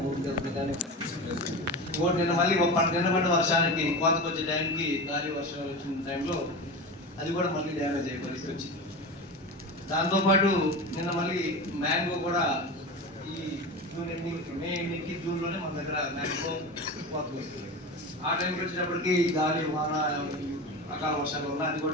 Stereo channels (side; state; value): both; normal; correlation 0.26